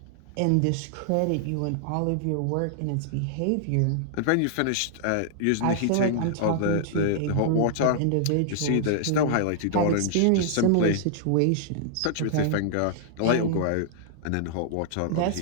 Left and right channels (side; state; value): both; different; correlation -0.01